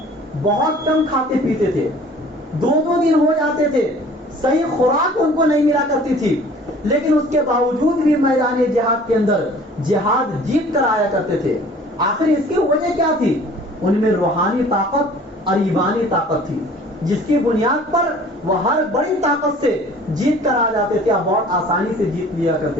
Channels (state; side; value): normal; both; correlation 0.50